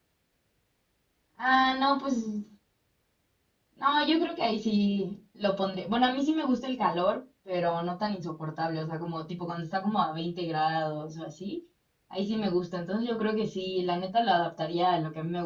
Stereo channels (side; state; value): both; identical; correlation 1.00